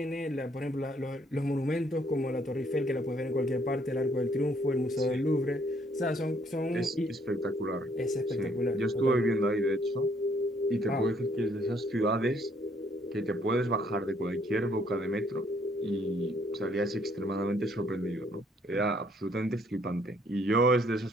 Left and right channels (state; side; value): normal; both; correlation 0.66